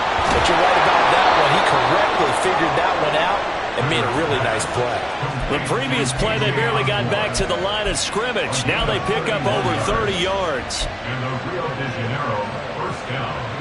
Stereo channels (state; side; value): identical; both; correlation 1.00